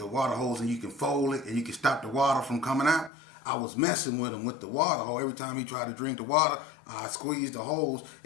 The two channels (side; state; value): right; drops out; at 3.1 s